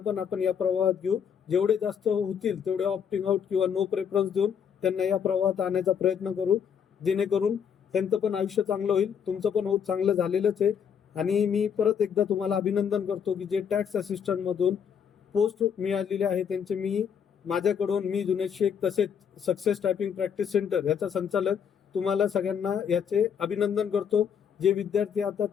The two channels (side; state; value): right; quieter; 7.5 dB